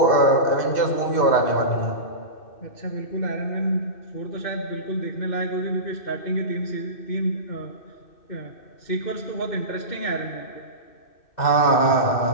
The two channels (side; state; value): right; late; 2.6 ms